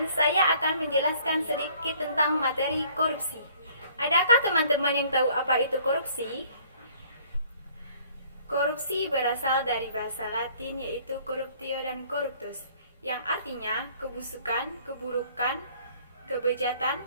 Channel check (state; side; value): inverted; both; correlation -0.57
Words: saya akan menjelaskan sedikit tentang materi korupsi. Adakah teman-teman yang tahu apa itu korupsi? Korupsi berasal dari bahasa Latin yaitu corruptio dan corruptus, yang artinya kebusukan, keburukan, kebejatan,